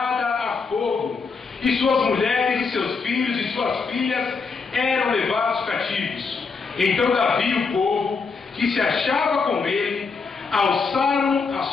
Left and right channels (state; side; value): quieter; right; 4.9 dB